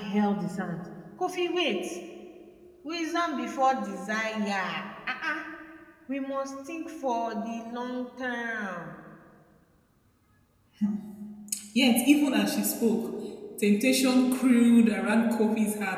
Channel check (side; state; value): both; identical; correlation 1.00